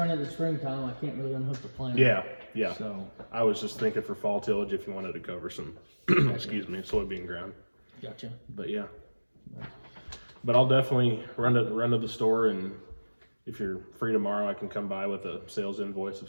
in the springtime, I can't really unhook the plant. Yeah. So I was just thinking for fall tillage if you wanted to cover some, excuse me, soybean ground. Gotcha. But yeah. But I'll definitely run to the store, and if you're free tomorrow, I can come by with a sales invoice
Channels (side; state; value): both; inverted; correlation -1.00